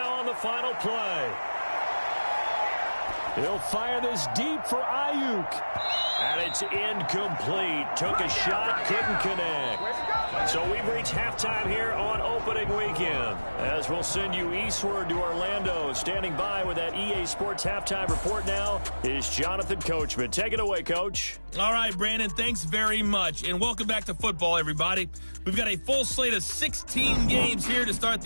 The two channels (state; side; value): inverted; both; correlation -1.00